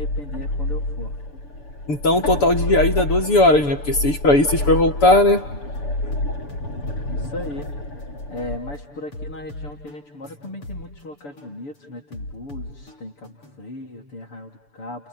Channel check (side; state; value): right; late; 6.9 ms